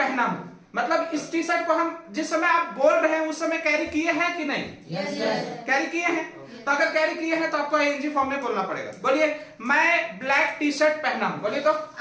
हूं, मतलब इस टी शर्ट को हम जिस समय आप बोल रहे हैं उस समय कैरी किए हैं कि नहीं? कैरी किए हैं। तो अगर कैरी किए हैं तो आपको आईएनजी फॉर्म में बोलना पड़ेगा। बोलिए मैं ब्लैक टी शर्ट पहना हूं, बोलिए तो I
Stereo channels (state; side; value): identical; both; correlation 1.00